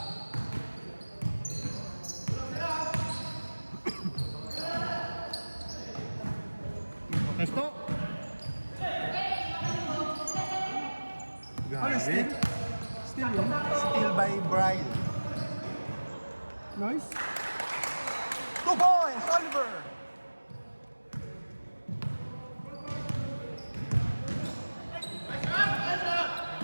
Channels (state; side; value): inverted; both; correlation -1.00